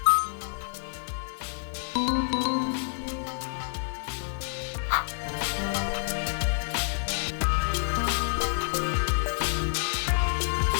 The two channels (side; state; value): right; silent; digital silence